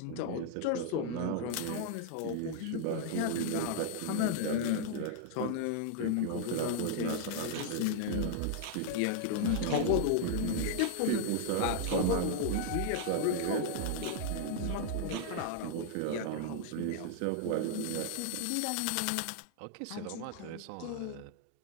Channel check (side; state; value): both; different; correlation 0.00